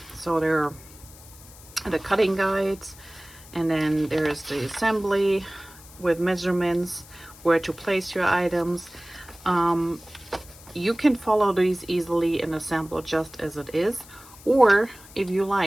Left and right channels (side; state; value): left; noise; hiss, 21 dB below the sound